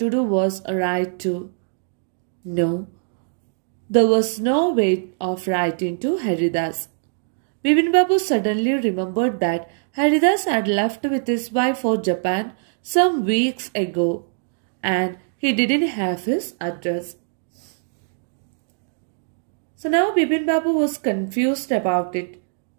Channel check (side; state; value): left; silent; digital silence